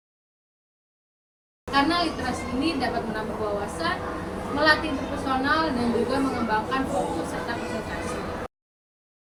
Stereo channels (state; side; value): identical; both; correlation 1.00